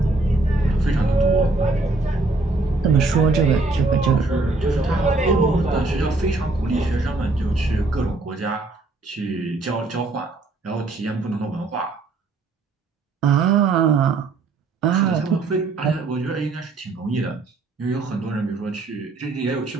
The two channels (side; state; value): left; quieter; 3.5 dB